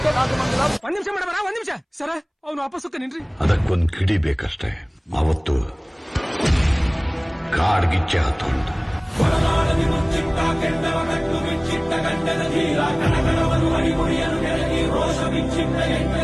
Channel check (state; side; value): identical; both; correlation 1.00